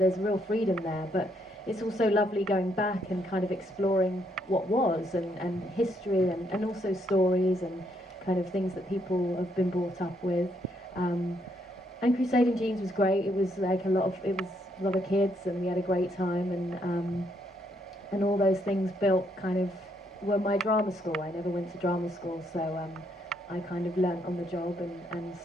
real freedom there, but it's also lovely going back and kind of exploring what was, and history, and also stories and kind of things that people have been brought up with. And Crusading Jeans was great. It was like a lot of kids, and we had a great time, and all those things built kind of were my drama school. I never went to drama school, so I kind of learnt on the job, and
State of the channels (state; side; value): normal; both; correlation 0.74